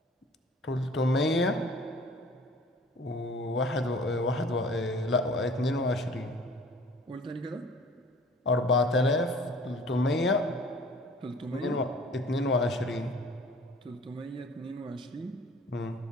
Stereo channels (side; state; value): both; normal; correlation 0.48